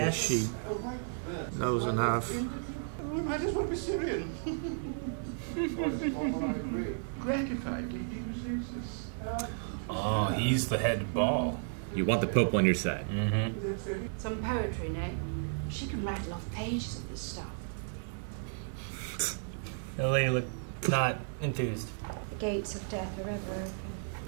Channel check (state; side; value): silent; left; digital silence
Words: she knows enough. We might as well be Syrian. Gratifyingly deep. Oh, he's the head ball. You want the Pope on your side. Mm-hmm. Some poetry, no? She can rattle off pages of this stuff. The lady looked not enthused. The gates of death are ever open.